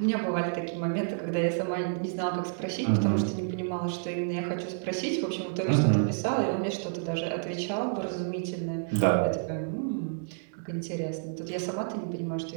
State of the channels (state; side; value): silent; left; digital silence